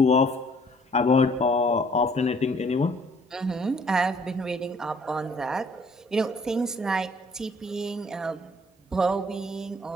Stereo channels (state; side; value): normal; both; correlation 0.59